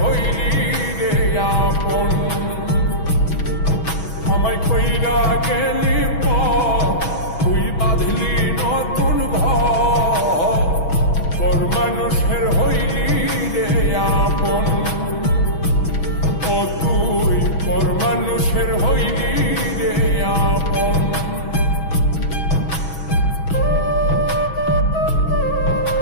হইলি রে আপন। আমায় কইরা গেলি তুই বাঁধলি নতুন ঘর, পর মানুষের হইলি রে আপন। ও তুই পর মানুষের হইলি রে আপন।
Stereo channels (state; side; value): late; right; 6.2 ms